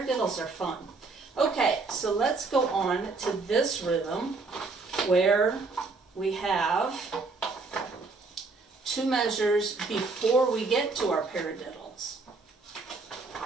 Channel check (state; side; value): quieter; left; 3.9 dB